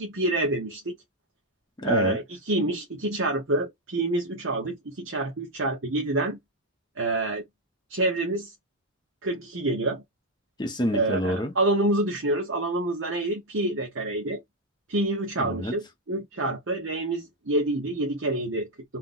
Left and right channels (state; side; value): normal; both; correlation 0.03